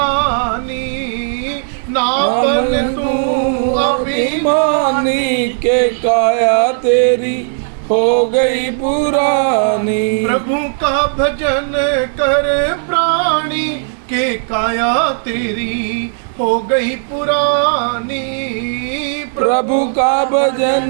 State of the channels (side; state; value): left; silent; digital silence